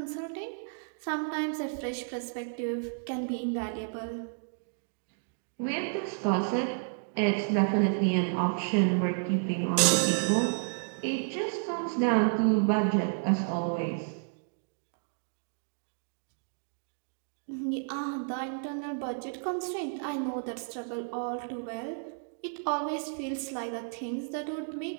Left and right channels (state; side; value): silent; left; digital silence